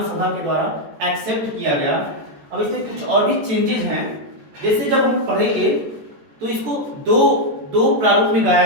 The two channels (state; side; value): late; left; 14 ms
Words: सभा के द्वारा एक्सेप्ट किया गया। अब इसमें कुछ और भी चेंजेस हैं, जैसे जब हम पढ़ेंगे तो इसको दो प्रारूप में